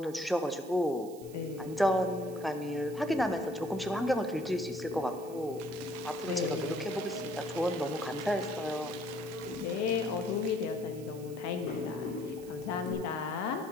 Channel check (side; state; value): right; noise; hiss, 20 dB below the sound